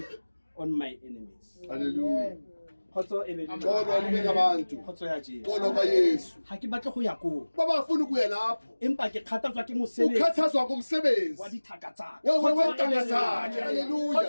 on my enemies. Hallelujah. Khotso e be le lona. Xolo libe nabantu. Khotso ya Jesu. Xolo ka Yesu. Ha ke batle go ya ko. Baba afuna ukuya lapho. Empa ke kgathatswa ke mosebetsi. Ukhathazwa ngomsebenzi. Wa dithaka tsa. Wentanga zakhe. Hallelujah.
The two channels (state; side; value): inverted; both; correlation -1.00